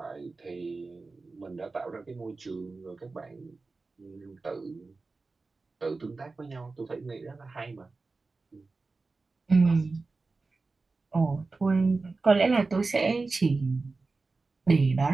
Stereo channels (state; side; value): quieter; left; 3.8 dB